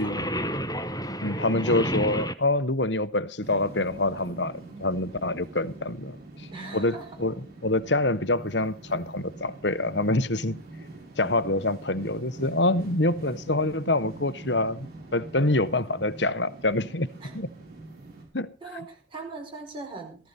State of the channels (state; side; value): normal; both; correlation -0.02